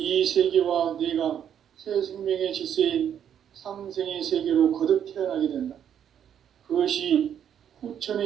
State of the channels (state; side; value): quieter; left; 9.1 dB